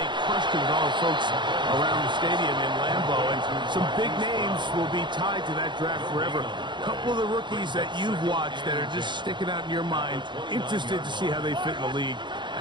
crushed it with all the folks around the stadium in Lambeau, and some big names will be tied to that draft forever. A couple of the rookies that you've watched that are just sticking out in your mind, interested to see how they fit in the league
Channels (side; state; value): left; late; 0.22 ms